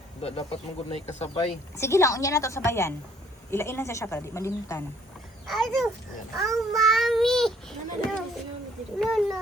Dapat mo gud na ikasabay. Sige lang, unya na to sa bayan. Ilain lang siya para di malimtan.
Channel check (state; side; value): normal; both; correlation 0.61